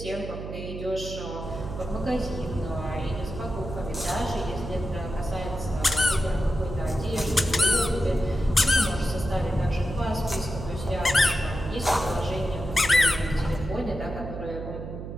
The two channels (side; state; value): right; noise; hum, 8 dB below the sound